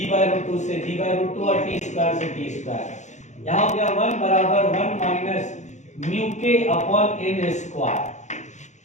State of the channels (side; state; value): right; late; 0.34 ms